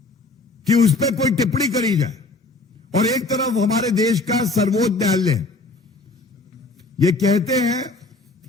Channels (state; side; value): quieter; right; 3.2 dB